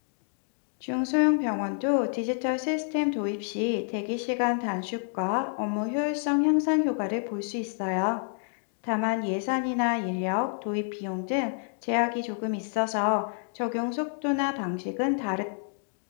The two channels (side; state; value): right; silent; 59 dB below the other